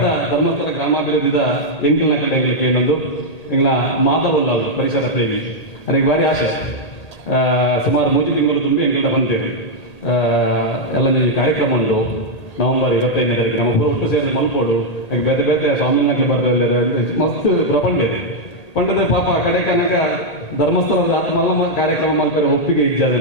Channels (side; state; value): right; late; 1.9 ms